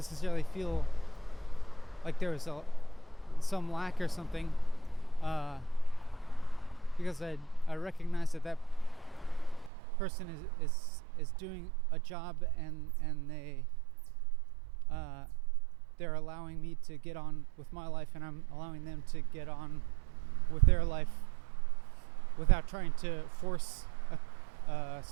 feel like there was some lack or something, because I recognize that person is doing a job, and they're allowing me to get on with my life, and I'm allowing them to get on with their life without trying to force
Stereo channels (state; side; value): drops out; left; at 9.7 s